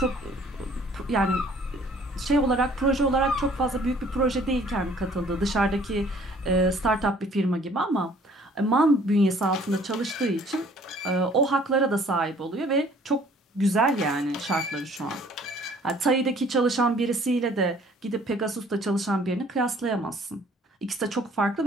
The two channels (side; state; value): both; normal; correlation 0.56